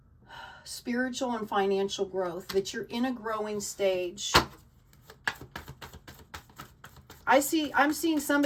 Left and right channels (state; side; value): identical; both; correlation 1.00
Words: Spiritual and financial growth, that you're in a growing stage. I'm seeing